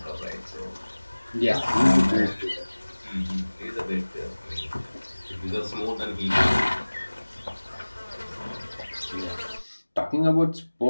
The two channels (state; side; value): inverted; both; correlation -1.00